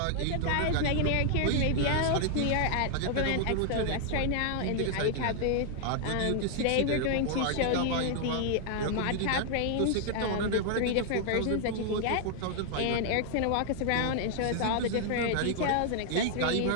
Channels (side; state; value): both; different; correlation 0.00